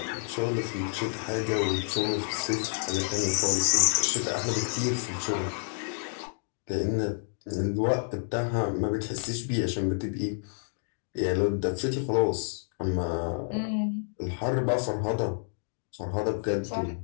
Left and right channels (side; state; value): right; silent; digital silence